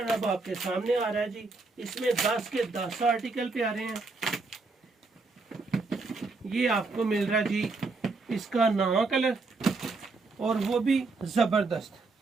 अब आपके सामने आ रहा है जी। इसमें 10 के 10 आर्टिकल पे आ रहे हैं। ये आपको मिल रहा है जी इसका 9वां कलर, और वो भी जबरदस्त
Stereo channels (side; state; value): left; quieter; 3.8 dB